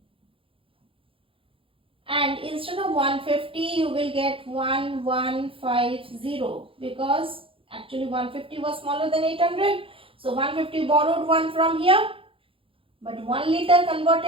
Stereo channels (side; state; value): left; late; 0.26 ms